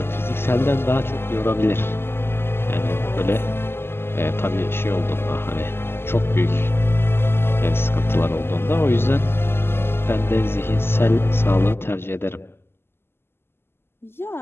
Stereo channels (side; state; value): right; late; 0.11 ms